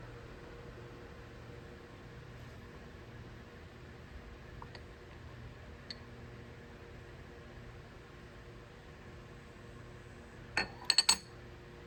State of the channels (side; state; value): both; identical; correlation 1.00